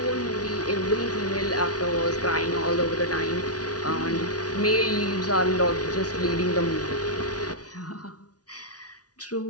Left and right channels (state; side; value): late; right; 0.68 ms